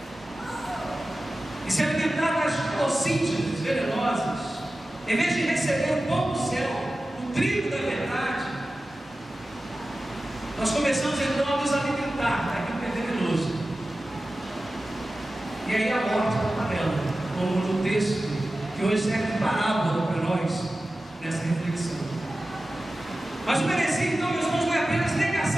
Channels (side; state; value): both; normal; correlation 0.95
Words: e se alimentar das toxígenas venenosas, em vez de receber o pão do céu, o trigo da verdade, nós começamos então a nos alimentar daquilo que é venenoso. E aí a morte está panela, como no texto que hoje serve de parábola para nós nessa reflexão. Mas o heresia, então, meus irmãos, não é apenas